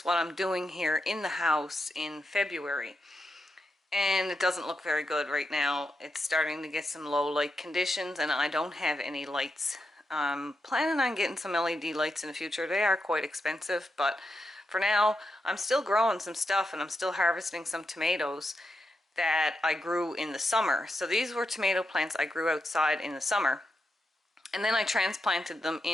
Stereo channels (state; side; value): normal; both; correlation 0.86